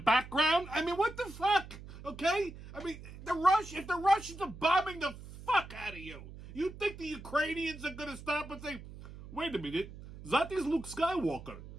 I mean, what the fuck? Okay? I mean, if the Russians are bombing the fuck out of you, you think the Ukrainians are gonna stop and say, wait a minute, that is Luke Skywalker.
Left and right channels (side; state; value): right; noise; hum, 15 dB below the sound